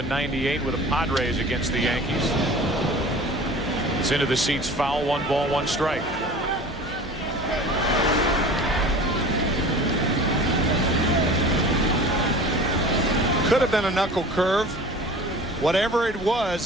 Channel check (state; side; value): normal; both; correlation 0.40